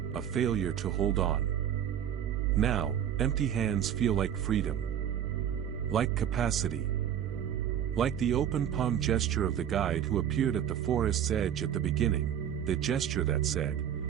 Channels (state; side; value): quieter; left; 9.6 dB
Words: a failure to hold on. Now, empty hands feel like freedom. Like capacity. Like the open palm gesture of the guide who appeared at the forest's edge at the beginning, the gesture that said,